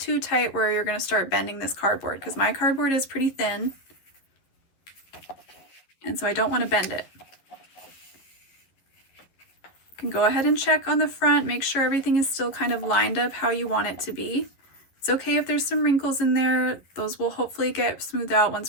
tight where you're going to start bending this cardboard, because my cardboard is pretty thin, and so I don't want to bend it. You can go ahead and check on the front, make sure everything is still kind of lined up how you want it to be. It's okay if there's some wrinkles in there, those will hopefully get smoothed out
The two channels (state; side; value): late; right; 11 ms